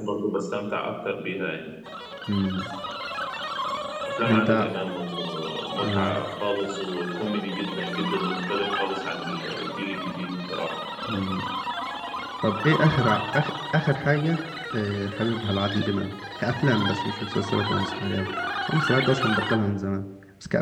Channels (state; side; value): identical; both; correlation 1.00